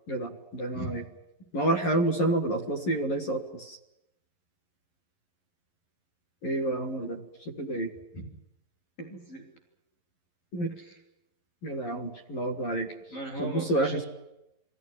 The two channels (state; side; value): late; right; 11 ms